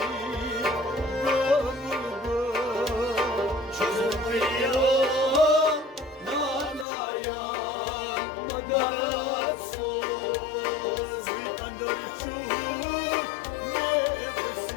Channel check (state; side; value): drops out; right; at 6.9 s